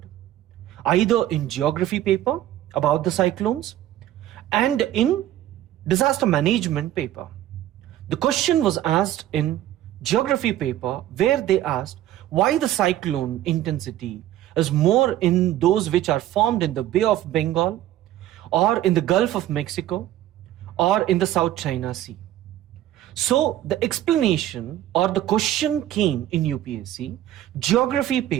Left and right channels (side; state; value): left; quieter; 13.1 dB